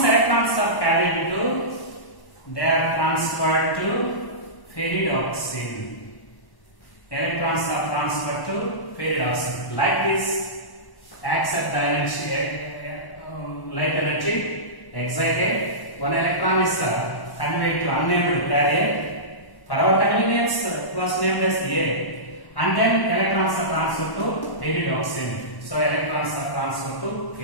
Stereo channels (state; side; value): late; right; 1.1 ms